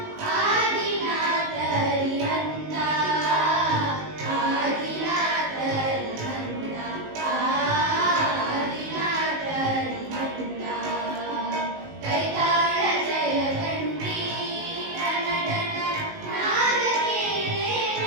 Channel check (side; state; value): left; late; 19 ms